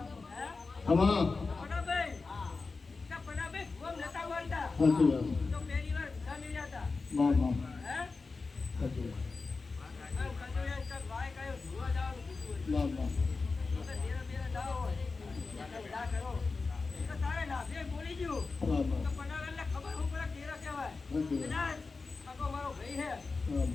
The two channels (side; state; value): right; quieter; 4.1 dB